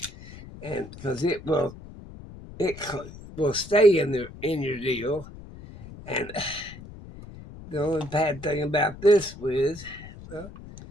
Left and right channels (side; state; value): left; noise; rumble, 16 dB below the sound